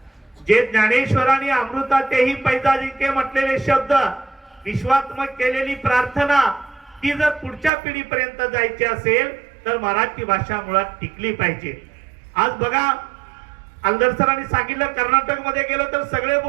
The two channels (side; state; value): left; drops out; at 7.7 s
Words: जे ज्ञानेश्वरांनी अमृतातेही पैजा जिंके म्हटलेले शब्द, विश्वात्मक केलेली प्रार्थना, ती जर पुढच्या पिढीपर्यंत जायची असेल तर मराठी भाषा मुळात टिकली पाहिजे. आज बघा, आलदर सरांनी सांगितलं कर्नाटक मध्ये गेलो तर सगळे